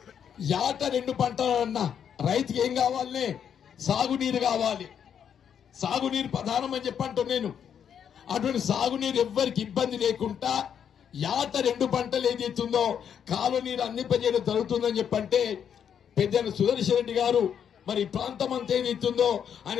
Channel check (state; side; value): quieter; right; 8.3 dB